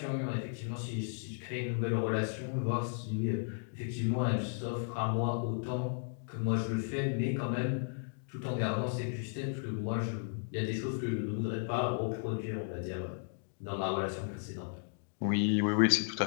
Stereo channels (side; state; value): right; silent; digital silence